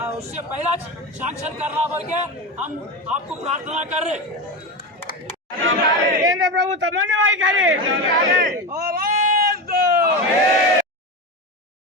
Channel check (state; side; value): normal; both; correlation 0.19